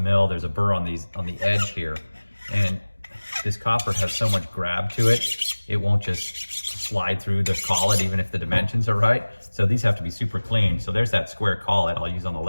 there's a burr on the edge here. And this copper has so much grab to it, it won't just slide through the collet even if the dimensions are right. So these have to be super clean. So there's that square collet I'll use on the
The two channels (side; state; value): both; inverted; correlation -1.00